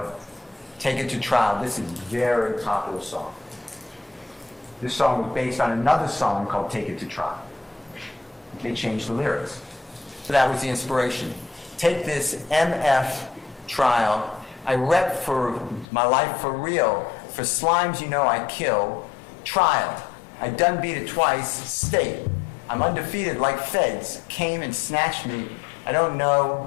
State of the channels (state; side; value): drops out; right; at 15.9 s